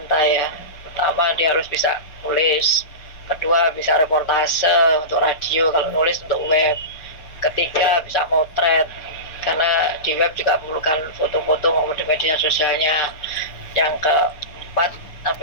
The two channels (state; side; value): late; right; 6.3 ms